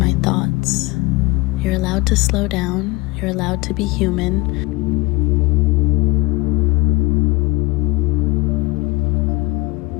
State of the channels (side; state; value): right; quieter; 23.5 dB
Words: thoughts. You're allowed to slow down. You're allowed to be human.